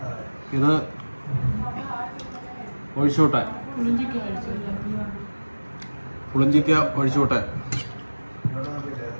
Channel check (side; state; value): both; inverted; correlation -1.00